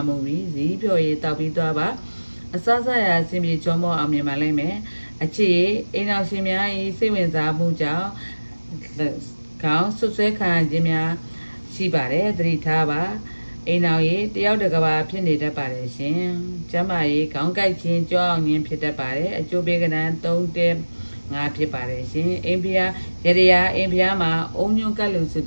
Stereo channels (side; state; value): both; inverted; correlation -1.00